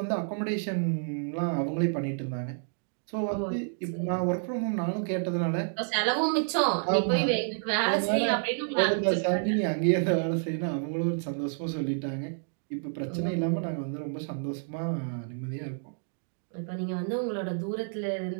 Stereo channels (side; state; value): left; silent; digital silence